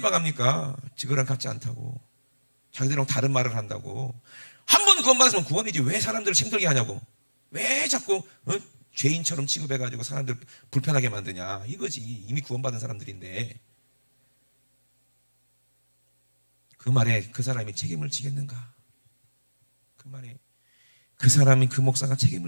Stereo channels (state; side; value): inverted; both; correlation -1.00